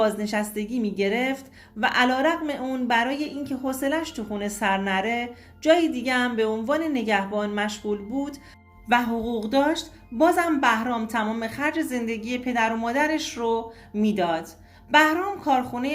میگرفت و علیرغم اون برای اینکه حوصله‌اش تو خونه سر نره جای دیگه هم به عنوان نگهبان مشغول بود و حقوق داشت، بازم بهرام تمام خرج زندگی پدر و مادرش رو میداد. بهرام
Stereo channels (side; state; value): both; identical; correlation 1.00